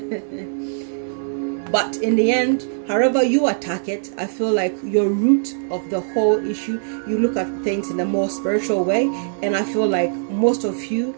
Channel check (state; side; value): silent; left; digital silence